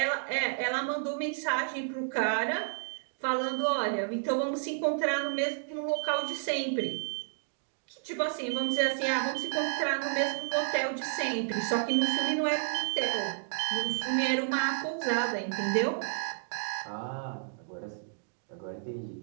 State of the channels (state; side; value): silent; left; digital silence